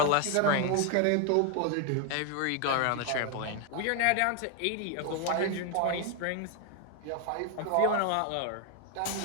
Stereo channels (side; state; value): both; different; correlation 0.01